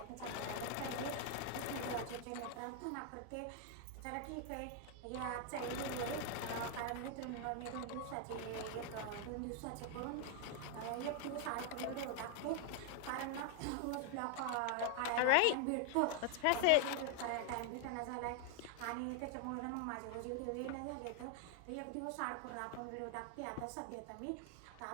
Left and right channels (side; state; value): both; different; correlation 0.00